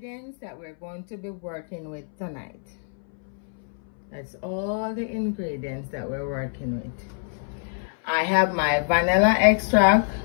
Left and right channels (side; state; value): right; silent; 61 dB below the other